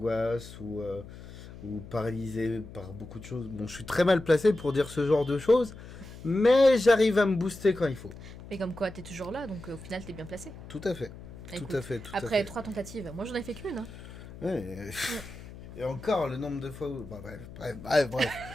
ou paralysé par beaucoup de choses. Bon, je suis très mal placé pour dire ce genre de choses, mais j'arrive à me booster quand il faut. Mais comme quoi, t'es toujours là, donc au final, t'es bien placé. Tout à fait. Écoute, Tout à fait, tout à après fait. 3 tentatives, moi j'en ai fait qu'une. Hein. Ouais, et encore, le nombre de fois où... Bah, bref.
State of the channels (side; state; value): left; noise; hum, 15 dB below the sound